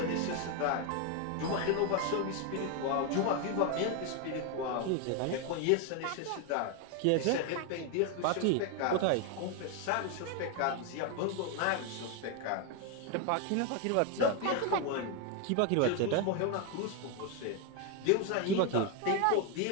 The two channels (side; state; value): both; different; correlation 0.01